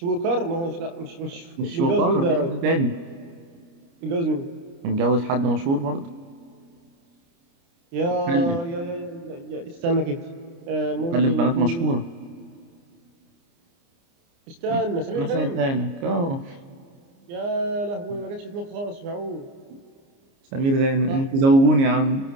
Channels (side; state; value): left; late; 29 ms